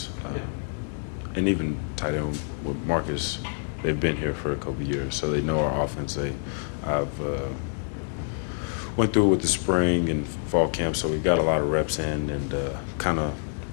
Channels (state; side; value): silent; right; 60 dB below the other